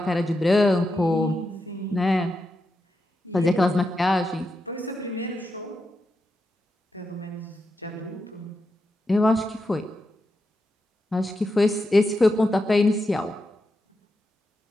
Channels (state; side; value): normal; both; correlation 0.87